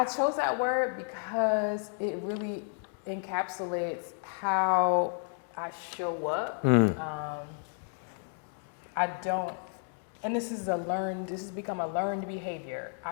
chose that word because it really encapsulates how I show up. I don't, and this has become a learned behavior.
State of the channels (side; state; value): right; silent; 57 dB below the other